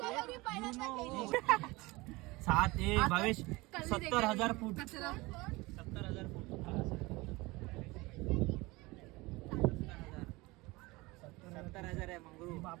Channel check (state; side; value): quieter; left; 22.6 dB